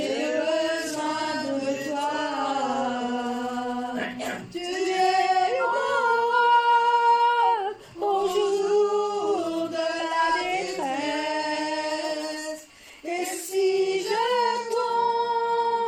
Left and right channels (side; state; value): both; identical; correlation 1.00